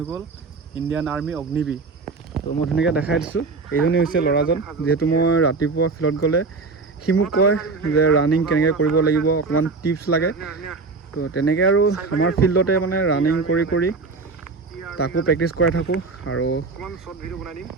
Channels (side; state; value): left; quieter; 4.1 dB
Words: গ'ল ইণ্ডিয়ান আৰ্মি অগ্নিবীৰ। তো মই ধুনীয়াকৈ দেখাই দিছোঁ, এইজনেই হৈছে ল'ৰাজন। যিহেতু মই ৰাতিপুৱা ফিল্ডত গ'লে সি মোক কয় যে ৰানিং কেনেকৈ কৰিব লাগিব, অকণমান টিপছ লাগে। তো তেনেকৈ আৰু আমাৰ ফিল্ডতে মানে ৰানিং কৰি তাকো প্ৰেক্টিছ কৰাই থাকোঁ। আৰু